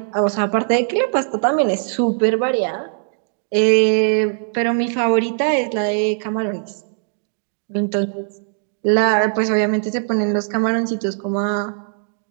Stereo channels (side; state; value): left; silent; digital silence